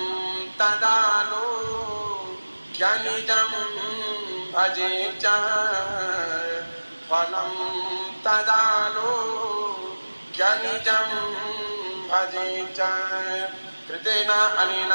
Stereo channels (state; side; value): inverted; both; correlation -1.00